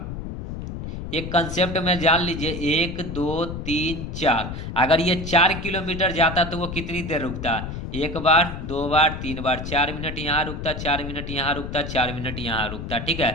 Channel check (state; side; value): noise; left; rumble, 7 dB below the sound